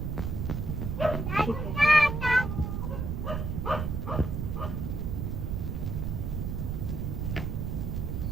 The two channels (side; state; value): right; noise; rumble, 2 dB below the sound